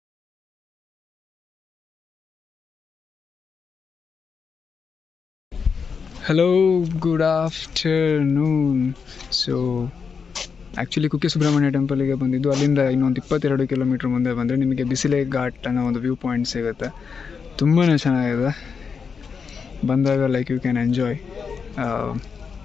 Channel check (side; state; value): right; quieter; 5.8 dB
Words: Hello, good afternoon. So actually Kukke Subrahmanya ಟೆಂಪಲಿಗೆ ಬಂದಿದ್ದು. ಅಲ್ಲಿಂದ ಇನ್ನೊಂದು 22 ಕಿಲೋಮೀಟ್ರ್ ಮುಂದೆ ಬಂದರೆ ನಿಮಗೆ ಬಿಸಿಲೆ ಘಾಟ್ ಅನ್ನೋ ಒಂದು ವ್ಯೂ ಪಾಯಿಂಟ್ ಸಿಗುತ್ತೆ. ತುಂಬಾ ಚೆನ್ನಾಗಿದೆ. ಬಂದಾಗ ಲೈಕ್ ಯು ಕ್ಯಾನ್ ಎಂಜಾಯ್